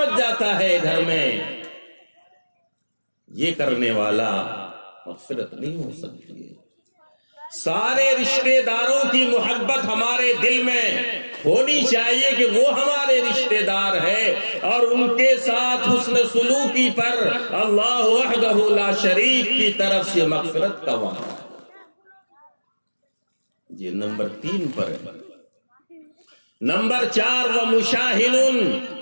جاتا ہے گھر میں، یہ کرنے والا مغفرت نہیں ہو سکتی ہے۔ سارے رشتہ داروں کی محبت ہمارے دل میں ہونی چاہیے کہ وہ ہمارے رشتہ دار ہے، اور ان کے ساتھ حسن سلوکی پر اللہ وحدہ لا شریک کی طرف سے مغفرت کا وعدہ ہے۔ یہ نمبر 3 پر ہے۔ نمبر 4 وَمُشَاحِنٌ،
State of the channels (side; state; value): both; inverted; correlation -1.00